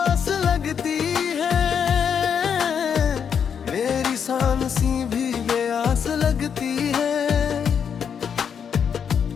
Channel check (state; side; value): quieter; right; 7.4 dB